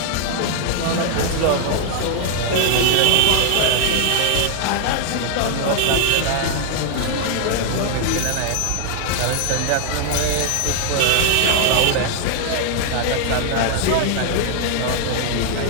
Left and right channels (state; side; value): different; both; correlation 0.00